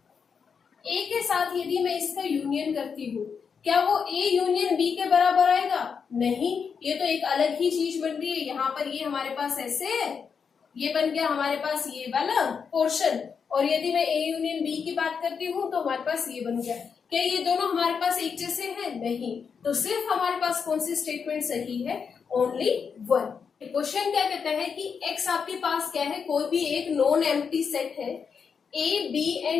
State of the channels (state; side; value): quieter; right; 6.2 dB